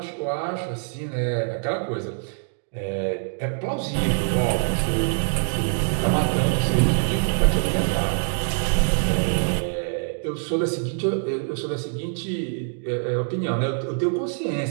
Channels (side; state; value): left; silent; digital silence